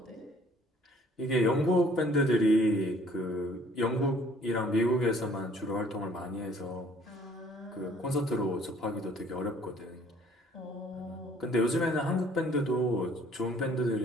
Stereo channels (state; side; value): normal; both; correlation 0.58